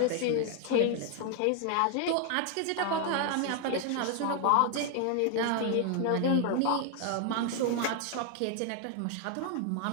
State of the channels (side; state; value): both; different; correlation 0.00